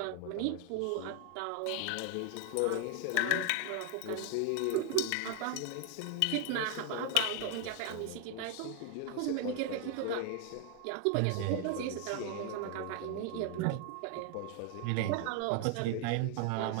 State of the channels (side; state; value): both; different; correlation 0.00